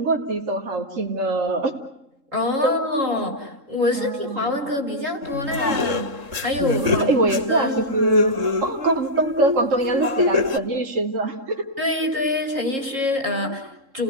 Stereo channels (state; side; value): late; left; 3.7 ms